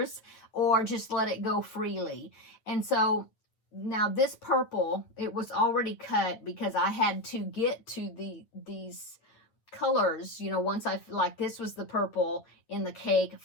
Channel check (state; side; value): late; right; 9.0 ms